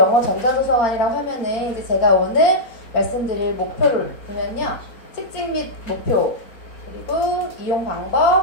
전자도서관이라고 하면은 이제 제가 오늘 말씀드릴 목표를 보면요, 특징 및 목표, 그리고 이용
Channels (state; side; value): late; right; 4.4 ms